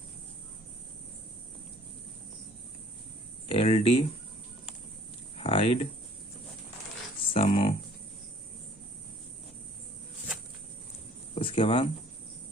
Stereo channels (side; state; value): both; normal; correlation 0.56